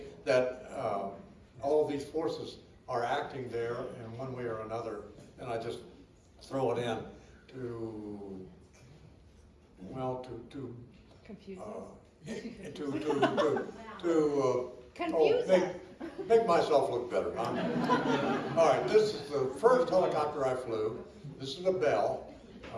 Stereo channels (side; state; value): both; identical; correlation 1.00